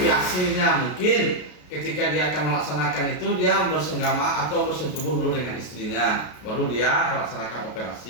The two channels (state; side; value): late; right; 33 ms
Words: mungkin ketika dia akan melaksanakan itu dia bersenggama atau bersentubuh dulu dengan istrinya, baru dia melaksanakan